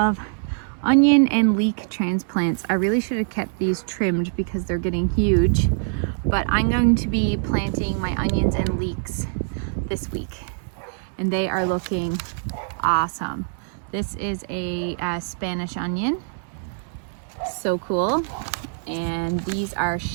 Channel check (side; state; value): left; silent; 60 dB below the other